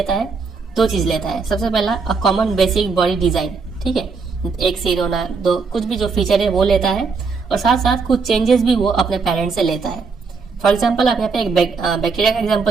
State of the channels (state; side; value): quieter; left; 4.8 dB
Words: है, दो चीज लेता है। सबसे पहला a common basic body design, ठीक है, एक सिर होना, दो कुछ भी जो फीचर है वो लेता है, और साथ साथ कुछ चेंजेस भी वो अपने पेरेंट से लेता है। फॉर एग्जाम्पल, आप यहाँ पे एक बैक्टीरिया का